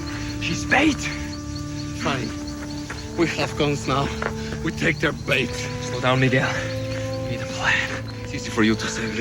She's bait. Fine. We have guns now. We take their bait. Slow down, Miguel. We need a plan. It's easy for you to say,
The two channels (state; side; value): identical; both; correlation 1.00